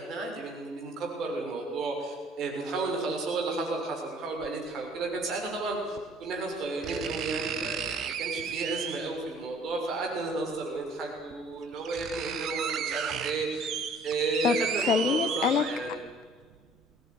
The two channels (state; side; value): normal; both; correlation 0.55